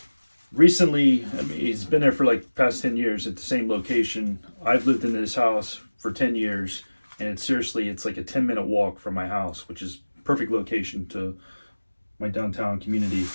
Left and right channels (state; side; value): inverted; both; correlation -1.00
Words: recently, I mean, it's been there for like past 10 years at the same location. I've lived in this house for 10 years and it's like a 10-minute walk from my house, which is perfect location to my downtown community.